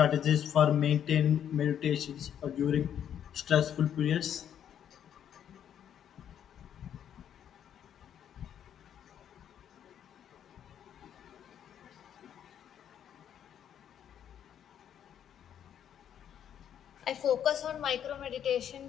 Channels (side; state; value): right; quieter; 9.4 dB